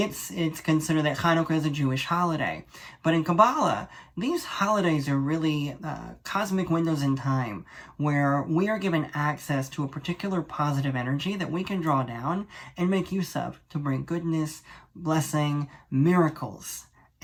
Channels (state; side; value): identical; both; correlation 1.00